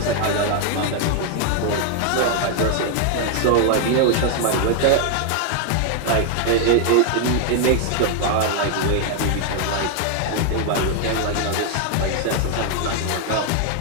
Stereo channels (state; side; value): different; both; correlation 0.00